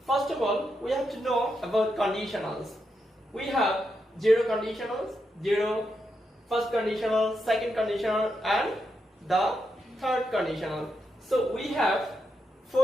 First of all, we have to know about conditionals. We have zero conditionals, zero, first conditional, second conditional, and the third conditional. So we have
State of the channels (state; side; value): normal; both; correlation 0.84